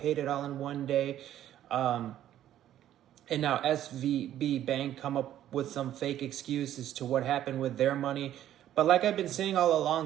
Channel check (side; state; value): left; quieter; 11.9 dB